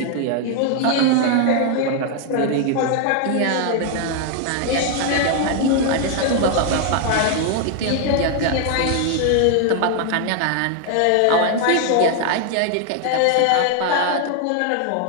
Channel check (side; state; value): both; different; correlation 0.00